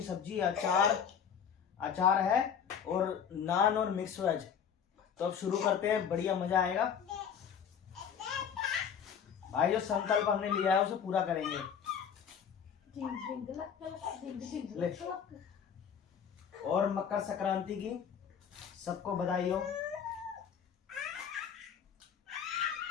सब्जी, अचार है और नान और मिक्स वेज। तो अब शुरू करते हैं, बढ़िया मजा आएगा। भाई जो संकल्प हमने लिया है उसे पूरा करेंगे। ले। और मकर संक्रांति की सबको बधाई हो।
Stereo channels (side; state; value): right; quieter; 7.7 dB